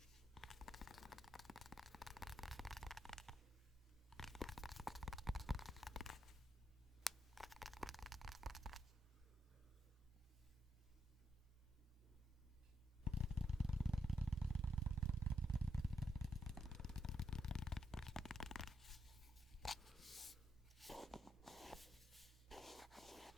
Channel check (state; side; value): normal; both; correlation 0.81